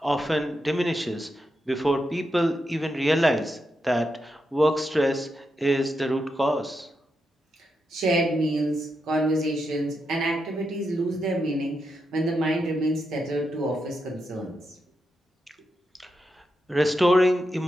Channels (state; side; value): normal; both; correlation 0.85